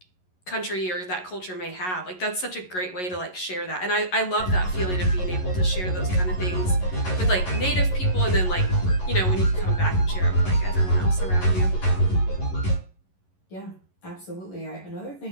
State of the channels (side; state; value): right; late; 11 ms